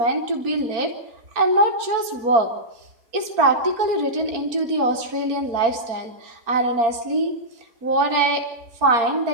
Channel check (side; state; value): left; late; 4.4 ms